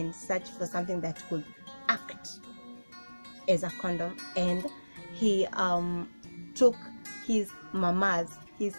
searched for something that could act as a condom, and he took his mother's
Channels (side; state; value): both; inverted; correlation -1.00